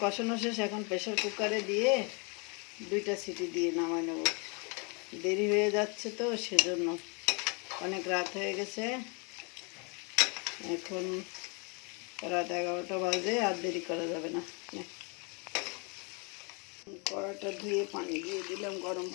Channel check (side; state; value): right; quieter; 33.2 dB